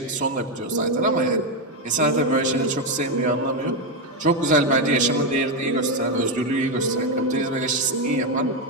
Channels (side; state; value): both; normal; correlation 0.06